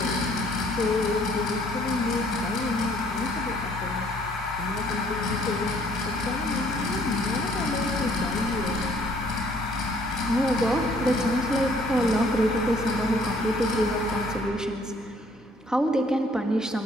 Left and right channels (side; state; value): both; normal; correlation 0.61